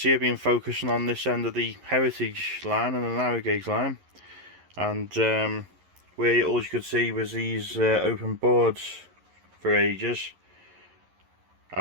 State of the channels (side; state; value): left; late; 11 ms